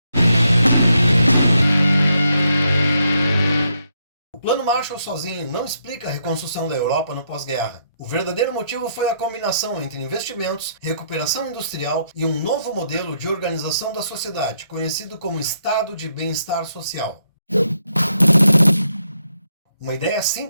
O Plano Marshall sozinho não explica a reconstrução da Europa no pós-guerra. O verdadeiro motivo foi a combinação entre investimentos, recuperação industrial e um novo modelo de organização da sociedade, conhecido como Estado de Bem-Estar Social. Uma ideia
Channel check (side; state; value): both; inverted; correlation -0.77